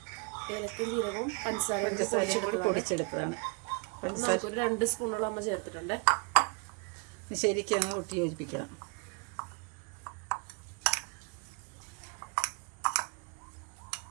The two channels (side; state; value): left; quieter; 34.3 dB